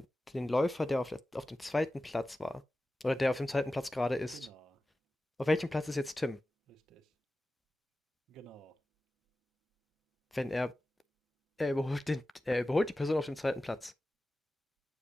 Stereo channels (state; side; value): normal; both; correlation 0.95